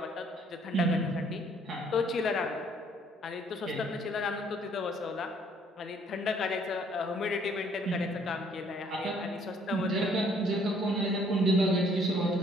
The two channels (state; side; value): normal; both; correlation 0.63